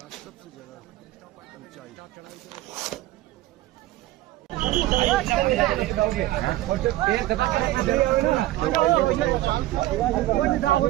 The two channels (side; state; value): left; quieter; 16.1 dB